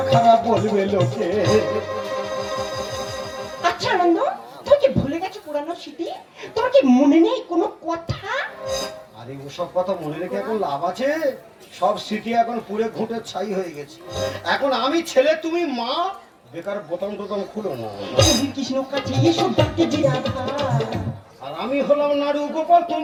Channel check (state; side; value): identical; both; correlation 1.00